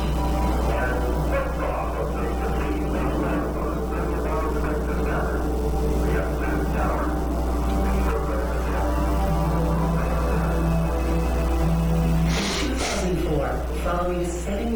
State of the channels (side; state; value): both; identical; correlation 1.00